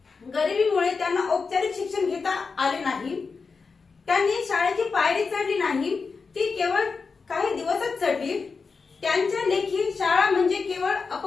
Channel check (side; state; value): right; quieter; 4.8 dB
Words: गरिबीमुळे त्यांना औपचारिक शिक्षण घेता आले नाही। त्यांनी शाळेची पायरी चढली नाही, ती केवळ काही दिवसच चढली। त्यांच्या लेखी शाळा म्हणजे केवळ